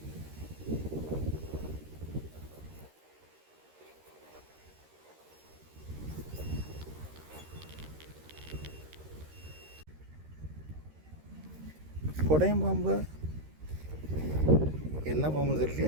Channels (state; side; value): late; left; 13 ms